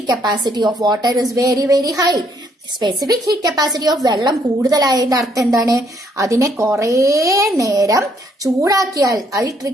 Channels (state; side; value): normal; both; correlation 0.69